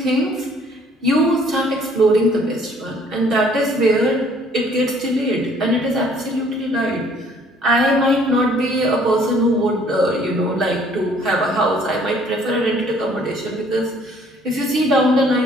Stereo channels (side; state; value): both; normal; correlation 0.59